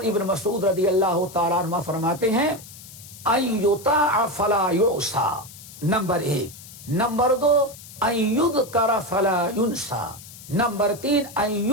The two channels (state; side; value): noise; left; hiss, 17 dB below the sound